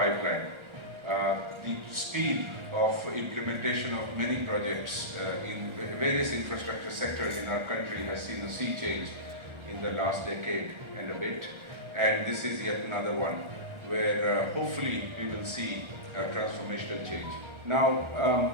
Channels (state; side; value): late; left; 1.4 ms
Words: The speed of implementation of many projects in various infrastructure sectors in our country has seen a sea change in the last decade and a bit, and this is yet another one where hopefully we will see a transformational change.